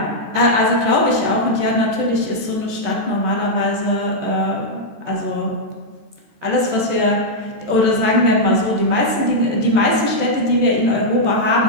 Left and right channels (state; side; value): late; left; 13 ms